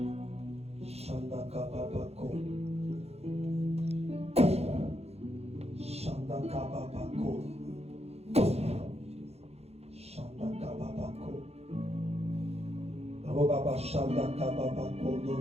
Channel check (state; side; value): late; left; 0.30 ms